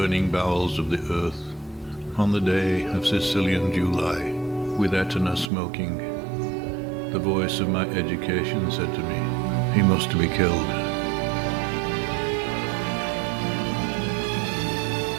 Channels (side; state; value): left; drops out; at 5.5 s